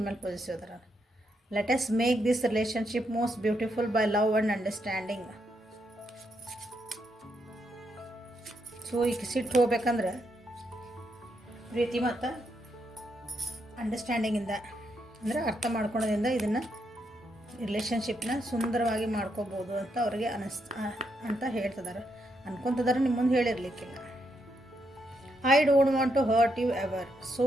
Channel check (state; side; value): normal; both; correlation 0.79